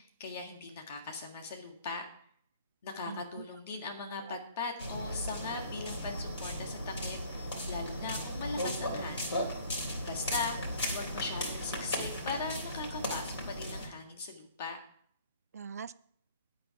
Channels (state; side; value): inverted; both; correlation -0.53